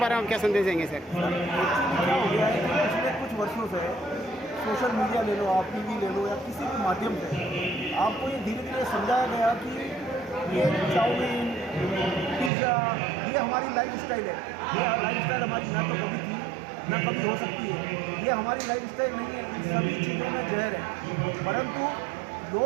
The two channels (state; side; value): drops out; left; at 12.5 s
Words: में हम क्या संदेश देंगे सर? क्या हो गया है कि पिछले कुछ वर्षों से सोशल मीडिया ले लो, आप टीवी ले लो, या किसी भी माध्यम से आपको ये धीरे धीरे समझाया गया कि ये चाउमीन, पिज़्ज़ा, ये हमारी लाइफ स्टाइल है। ये लाइफ स्टाइल हमारी ना तो कभी थी ना कभी हो सकती है, ये हमारी लाइफ स्टाइल नहीं है। इन सभी चीज़ों में जहर है, परंतु